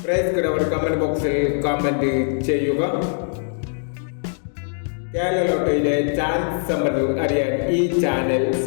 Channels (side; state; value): right; silent; digital silence